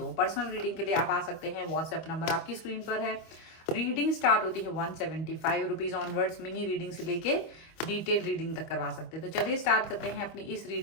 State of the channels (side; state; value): right; late; 25 ms